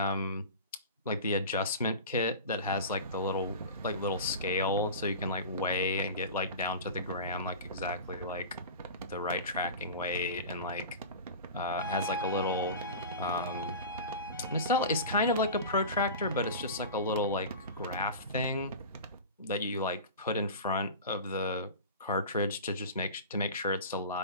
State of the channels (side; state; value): both; inverted; correlation -0.32